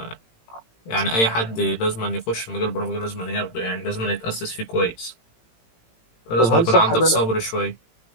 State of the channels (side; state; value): right; late; 18 ms